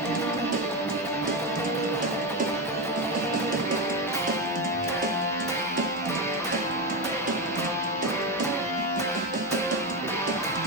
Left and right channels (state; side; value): normal; both; correlation 0.13